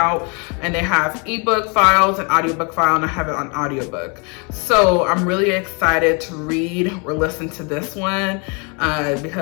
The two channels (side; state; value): right; quieter; 33.2 dB